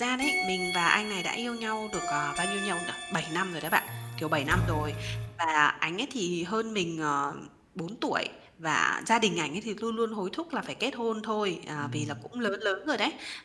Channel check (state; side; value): identical; both; correlation 1.00